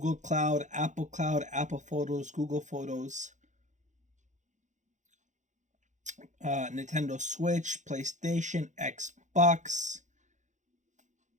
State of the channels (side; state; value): left; late; 0.35 ms